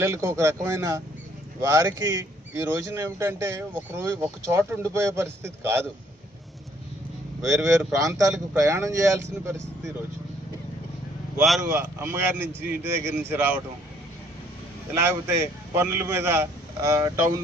ఒక రకమైన, వారికి ఈ రోజున ఏమిటంటే ఒక చోట ఉండిపోయే పరిస్థితి కాదు, వేరు ప్రాంతాలకు ప్రయాణం చేయాల్సిన పరిస్థితి. ఈరోజు వారు అమ్మగారి నుంచి, ఇంటి దగ్గర నుంచి రావటం, లేకపోతే పనుల మీద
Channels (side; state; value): both; normal; correlation 0.64